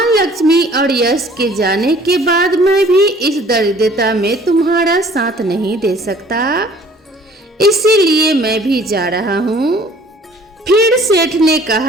लक्ष्मी और यश के जाने के बाद मैं भी इस दरिद्रता में तुम्हारा साथ नहीं दे सकता, इसीलिए मैं भी जा रहा हूँ। फिर सेठ ने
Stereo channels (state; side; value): normal; both; correlation 0.54